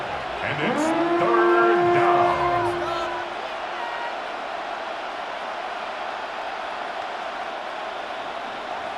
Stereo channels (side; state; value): both; identical; correlation 1.00